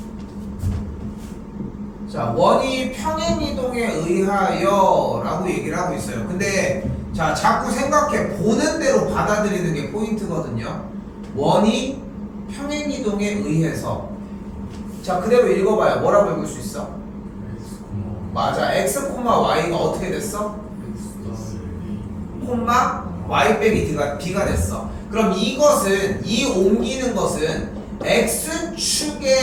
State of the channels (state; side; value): identical; both; correlation 1.00